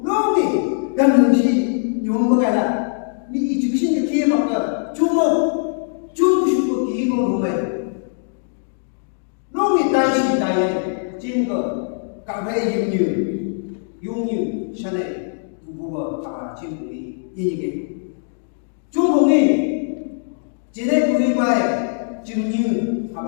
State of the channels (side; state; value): right; silent; digital silence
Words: lúc đi gần gì dùng một cái là bị chịu sinh cái kia mà cơ chúng không chúng có kỹ con của mình lúc đi tay trên cơ cả hai dùng như thế này buồn cả trên buồn đi như cái chúng buồn đi chỉ để buồn bài chừng như